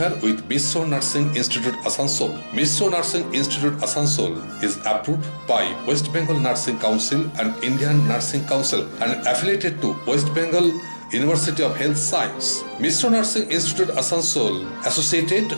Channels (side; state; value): both; inverted; correlation -1.00